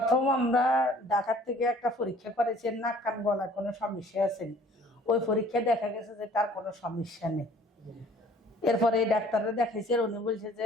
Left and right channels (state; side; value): normal; both; correlation 0.53